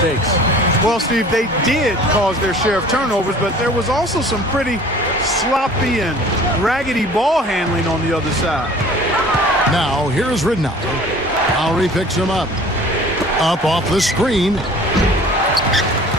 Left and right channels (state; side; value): normal; both; correlation 0.47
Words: Well, Steve, they did cause their share of turnovers, but there was also some pretty sloppy and raggedy ball handling on the other side. Now, here's Ridnour. Lowry picks him up. Up off the screen.